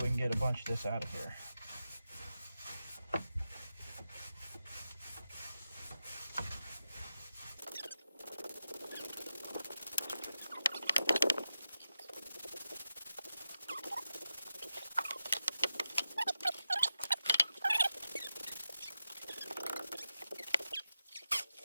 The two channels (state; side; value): inverted; both; correlation -0.90